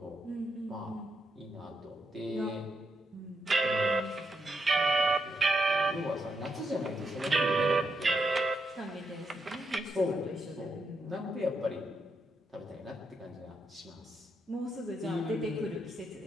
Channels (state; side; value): normal; both; correlation 0.81